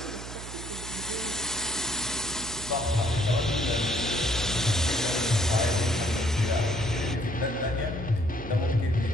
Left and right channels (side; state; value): right; noise; hum, 11 dB below the sound